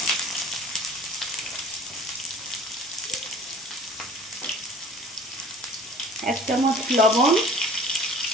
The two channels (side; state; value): both; normal; correlation 0.46